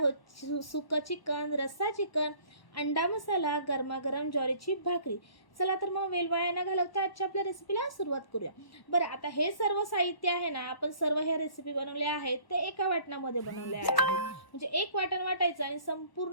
सुकं चिकन, रस्सा चिकन, अंडा मसाला, गरमागरम ज्वारीची भाकरी. चला तर मग वेळ वाया न घालवता आजच्या आपल्या रेसिपीला सुरुवात करूया. बरं, आता हे सर्व साहित्य आहे ना, आपण सर्व ह्या रेसिपी बनवले आहेत ते एका वाटणामध्ये बनवले आहेत. म्हणजे एक वाटण वाटायचं आणि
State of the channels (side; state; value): right; late; 1.1 ms